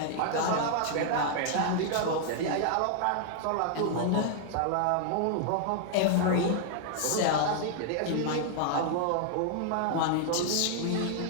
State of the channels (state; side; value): different; both; correlation -0.01